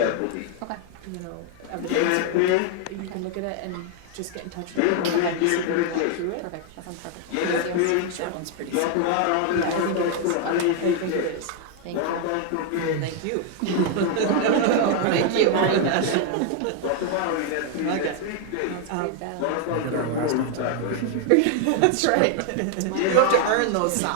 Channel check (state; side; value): different; both; correlation 0.00